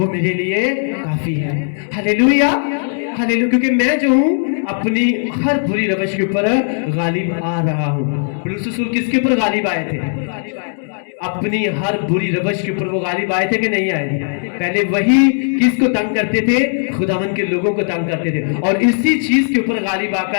میرے لیے کافی ہے۔ ہلیلویا، ہلیلویا۔ کیونکہ میں جو ہوں اپنی ہر بری روش کے اوپر غالب آ رہا ہوں۔ پولس رسول کس کے اوپر غالب آئے تھے؟ اپنی ہر بری روش کے اوپر وہ غالب آئے تھے کہ نہیں آئے تھے؟ پہلے وہی کس کو تنگ کرتے تھے؟ خداوند کے لوگوں کو تنگ کرتے تھے، اور اسی چیز کے اوپر غالب آ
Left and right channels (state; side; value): silent; right; 68 dB below the other